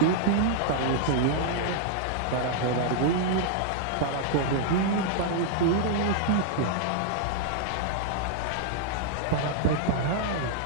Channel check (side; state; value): both; different; correlation -0.01